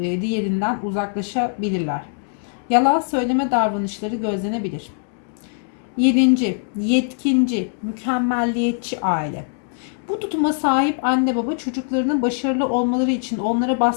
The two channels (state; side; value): silent; right; 65 dB below the other